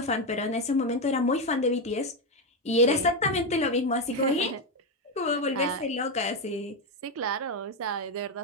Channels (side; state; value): both; normal; correlation 0.09